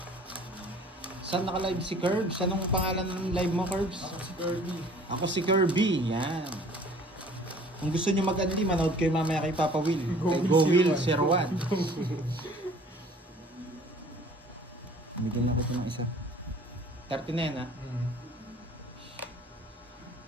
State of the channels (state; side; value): normal; both; correlation 0.50